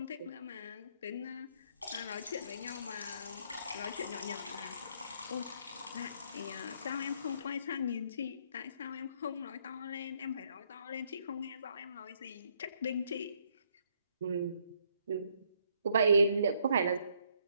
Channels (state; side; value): inverted; both; correlation -0.70